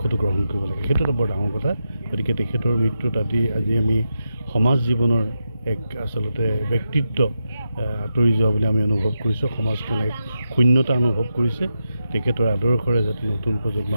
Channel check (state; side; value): inverted; both; correlation -0.87